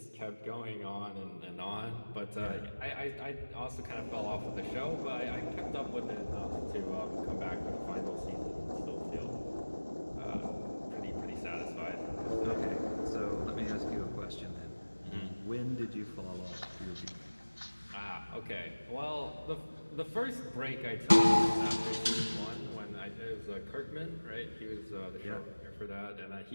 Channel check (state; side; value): inverted; both; correlation -1.00